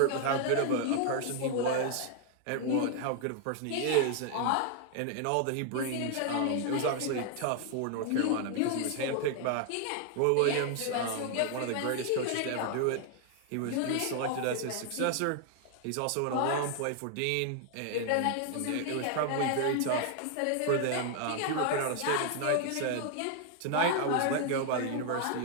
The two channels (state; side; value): different; both; correlation 0.00